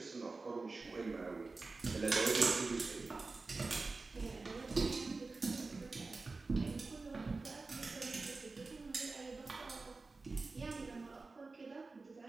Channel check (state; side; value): quieter; left; 3.8 dB